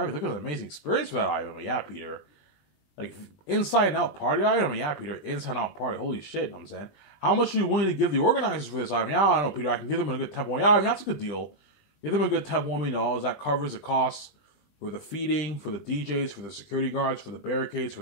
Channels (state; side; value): late; right; 20 ms